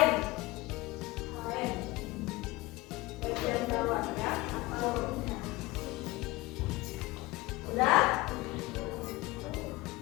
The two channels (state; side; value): quieter; right; 20.9 dB